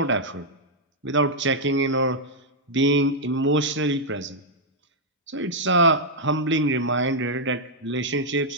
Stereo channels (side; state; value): both; normal; correlation -0.04